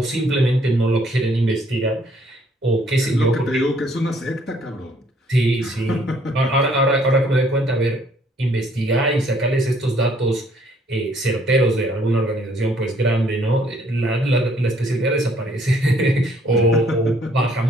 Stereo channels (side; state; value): both; normal; correlation 0.64